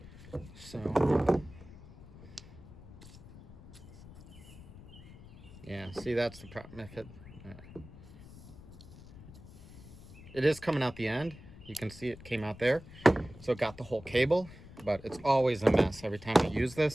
so yeah, so See, that's the problem. If it is coming out the end. You can see it came out there. So it got the whole cable, but it's always a mess every time I use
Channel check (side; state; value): left; noise; rumble, 18 dB below the sound